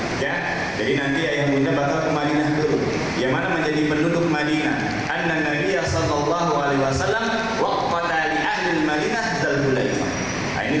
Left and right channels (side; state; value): left; noise; rumble, 21 dB below the sound